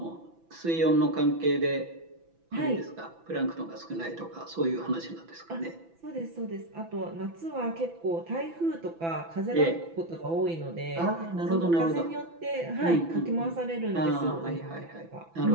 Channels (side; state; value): left; late; 6.0 ms